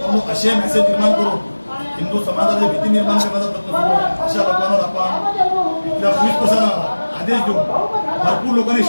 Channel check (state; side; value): inverted; both; correlation -1.00